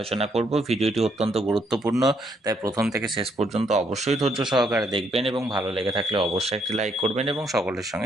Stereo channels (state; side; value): normal; both; correlation 0.72